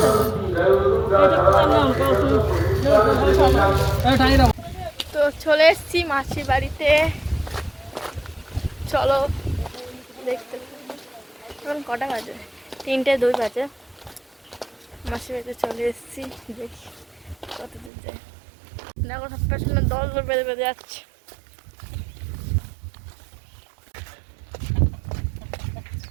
তো চলে এসছি মাসির বাড়িতে, চলো দেখতে। এখন কটা বাজে? 3:02 বাজে। মাসির বাড়িতে চলে এসছি, দেখি কত দূর যায়। দেখো সব পেছনে দল বেঁধে বেঁধে যাচ্ছে।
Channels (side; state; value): left; drops out; at 17.9 s